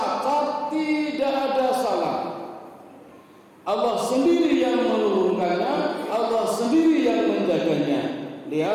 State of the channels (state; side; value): identical; both; correlation 1.00